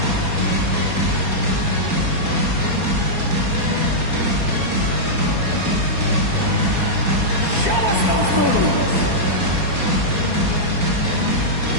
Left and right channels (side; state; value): left; late; 4.3 ms